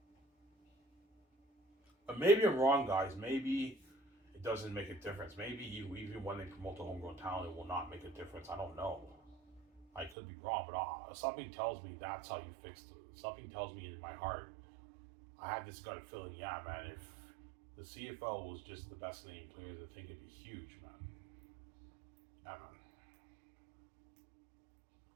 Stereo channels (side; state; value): left; drops out; at 10.2 s